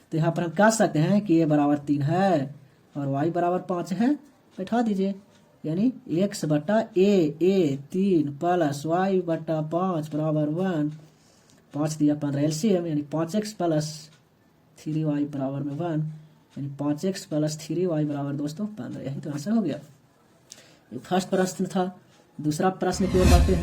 तो यहाँ पर हम कह सकते हैं कि a बराबर 3 है और y बराबर 5 है। बैठा दीजिए, यानी x/a 3 प्लस y/5 बराबर 1, 5 दिया 15 LCM, यानी 5x प्लस 3y बराबर में 1, यानी 5x प्लस 3y बराबर दोस्तों 15। यही तो आंसर हो गया। ये फर्स्ट प्रश्न था। दूसरा प्रश्न की ओर बढ़ते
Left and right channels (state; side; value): identical; both; correlation 1.00